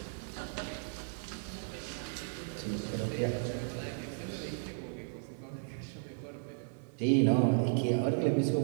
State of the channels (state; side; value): silent; left; digital silence